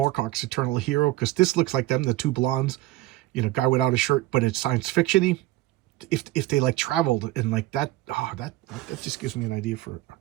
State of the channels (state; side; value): quieter; left; 17.1 dB